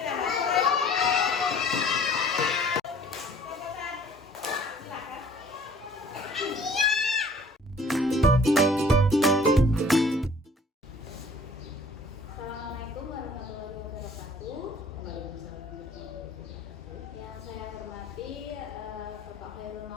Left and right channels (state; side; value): normal; both; correlation 0.53